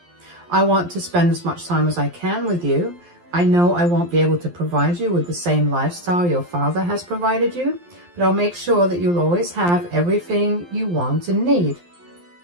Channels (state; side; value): late; left; 11 ms